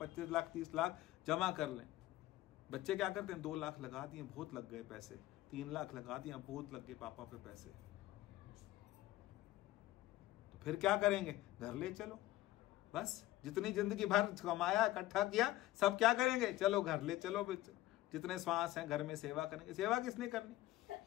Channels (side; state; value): right; quieter; 16.2 dB